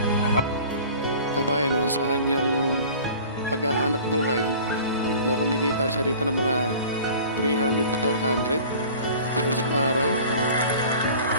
Kabayan, no, sa kanyang paghahanap buhay, no, kumikita siya rito ng mga 300-400 per isang araw.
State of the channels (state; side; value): inverted; both; correlation -0.44